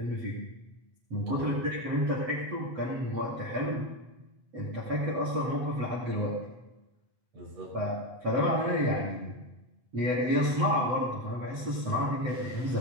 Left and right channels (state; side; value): late; left; 7.9 ms